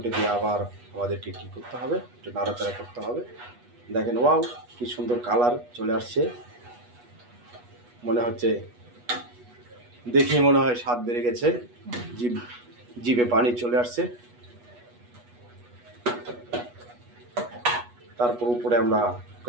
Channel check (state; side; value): late; left; 8.2 ms